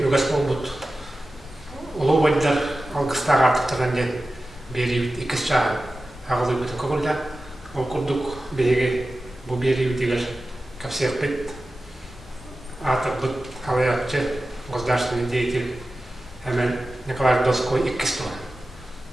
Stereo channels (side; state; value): both; normal; correlation 0.94